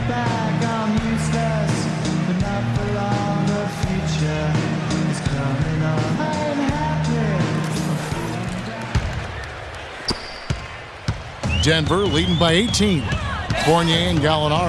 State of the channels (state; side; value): identical; both; correlation 1.00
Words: Denver leading by 18. Fournier and